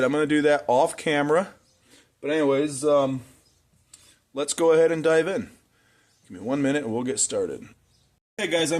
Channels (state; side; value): identical; both; correlation 1.00